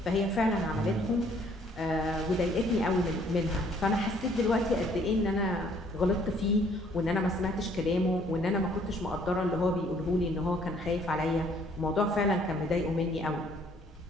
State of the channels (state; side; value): normal; both; correlation 0.62